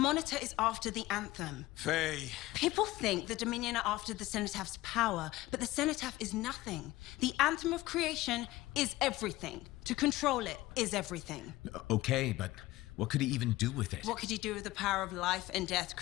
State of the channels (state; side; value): quieter; right; 17.9 dB